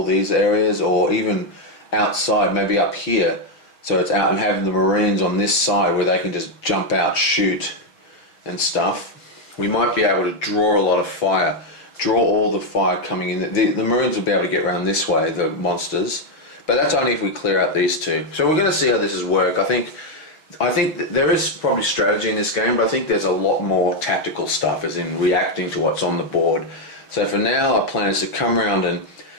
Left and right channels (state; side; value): late; right; 6.4 ms